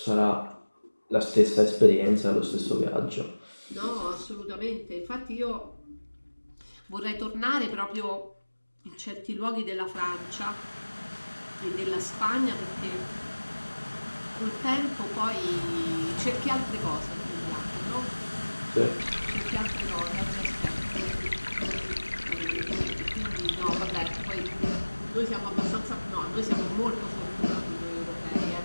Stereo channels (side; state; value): both; inverted; correlation -1.00